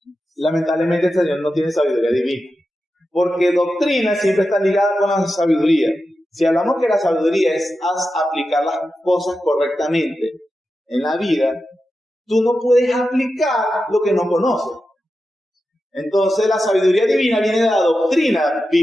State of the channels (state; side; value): normal; both; correlation 0.91